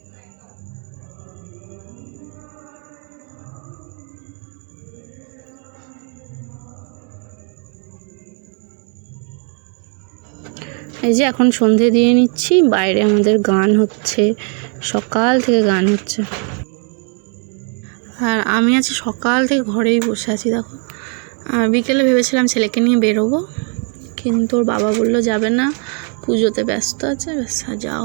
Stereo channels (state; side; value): quieter; left; 39.9 dB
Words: এই যে এখন সন্ধে দিয়ে নিচ্ছি, বাইরে আমাদের গান হচ্ছে, সকাল থেকে গান হচ্ছে। আর আমি আছি সকাল থেকে ঘরেই বসে আছি, দেখো। বিকেলে ভেবেছিলাম ছেলেকে নিয়ে বেরোবো, কিন্তু ওর বাবা বললো যাবে না, পুজোতে ব্যস্ত আছে, ব্যাস যাওয়া